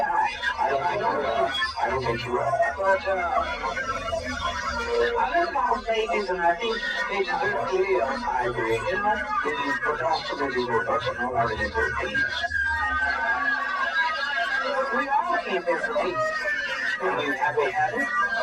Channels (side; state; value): both; identical; correlation 1.00